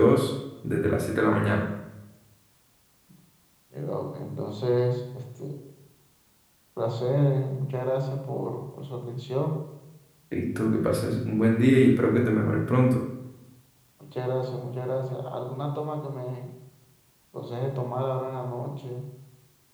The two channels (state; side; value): identical; both; correlation 1.00